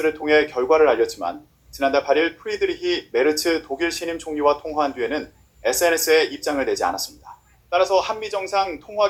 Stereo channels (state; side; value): identical; both; correlation 1.00